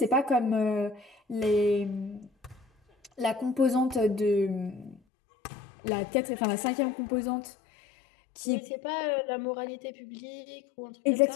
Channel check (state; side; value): drops out; right; at 5.0 s